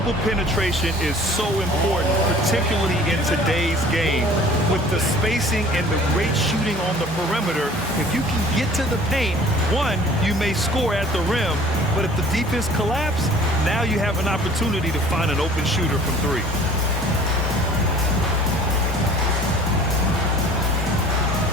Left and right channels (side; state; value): both; normal; correlation 0.49